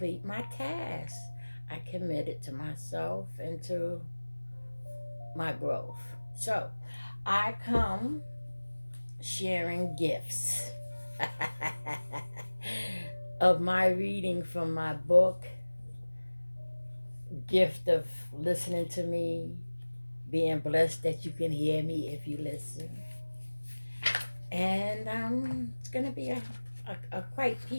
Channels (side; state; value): both; inverted; correlation -1.00